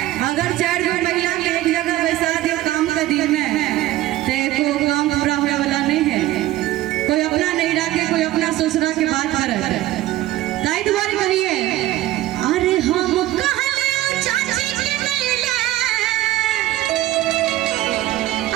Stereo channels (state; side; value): quieter; left; 15.4 dB